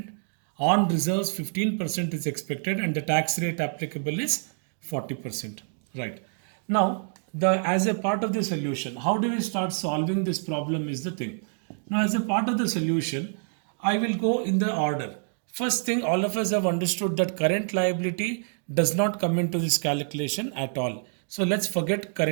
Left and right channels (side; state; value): left; silent; 60 dB below the other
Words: on reserves 15% is expected, and the tax rate applicable is 40%. Right. Now, as a part of the solution, how do we start solving this problem is the thing. Now, as a part of the solution, I will go in the order. First thing, all of us have understood that current liability does not come into this calculation at all. So let's forget